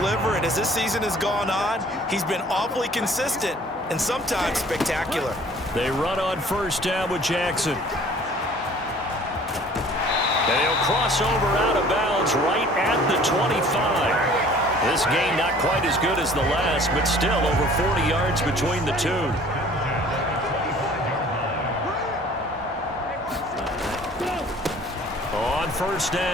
it. As this season has gone on, he's been awfully consistent and sometimes spectacular. They run on first down with Jackson. And he'll cross over out of bounds right at the 25. This game not quite as good as the last, but still over 40 yards between the two. On first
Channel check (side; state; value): both; normal; correlation 0.51